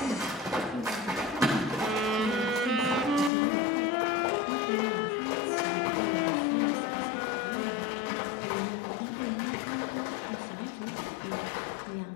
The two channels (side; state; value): right; drops out; at 3.3 s